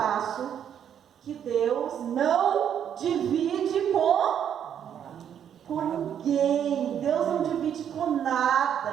que Deus não divide com ninguém. Deus não divide com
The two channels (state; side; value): quieter; left; 9.0 dB